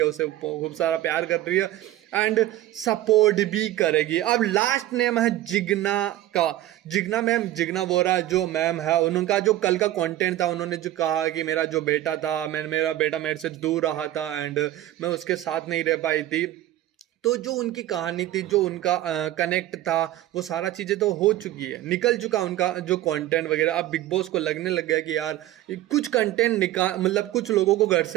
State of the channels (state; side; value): quieter; left; 14.3 dB